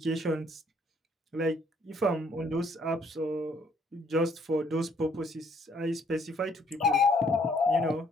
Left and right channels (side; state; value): both; normal; correlation 0.65